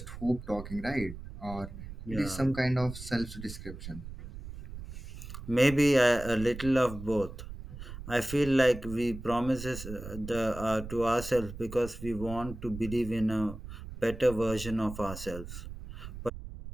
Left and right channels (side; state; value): right; noise; rumble, 11 dB below the sound